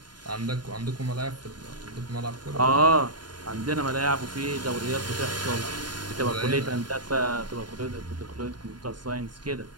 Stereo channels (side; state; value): left; late; 0.71 ms